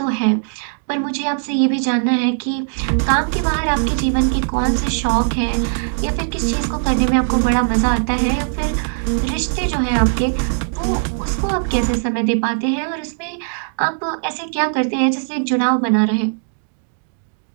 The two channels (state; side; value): silent; left; digital silence